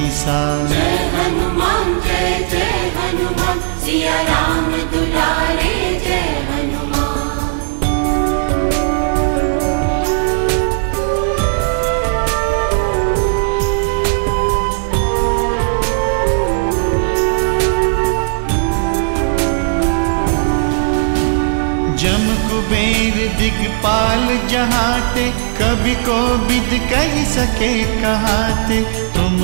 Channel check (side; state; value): left; silent; digital silence